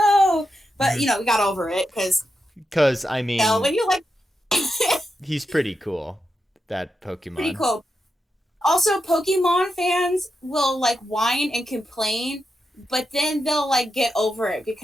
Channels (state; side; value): normal; both; correlation 0.87